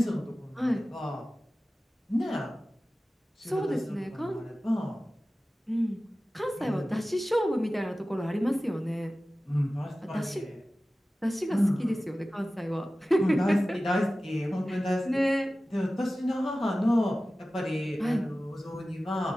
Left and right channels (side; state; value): both; normal; correlation 0.96